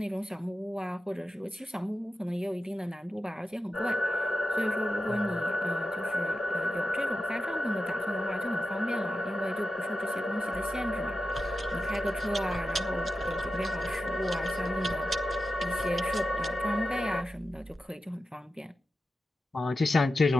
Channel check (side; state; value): both; normal; correlation 0.92